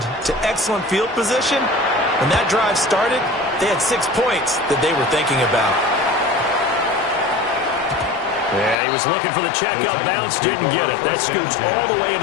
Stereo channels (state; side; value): drops out; right; at 8.8 s